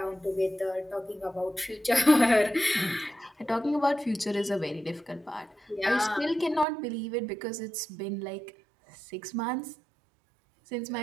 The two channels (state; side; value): drops out; left; at 6.7 s